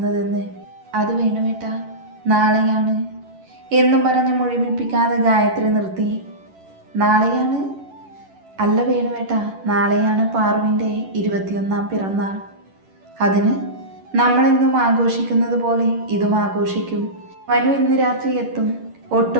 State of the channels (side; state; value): left; late; 11 ms